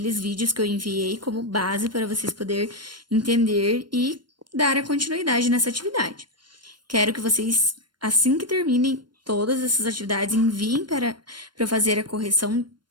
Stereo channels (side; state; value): left; late; 0.72 ms